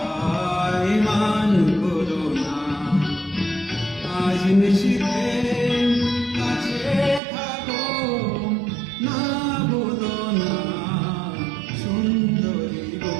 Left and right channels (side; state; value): left; drops out; at 7.2 s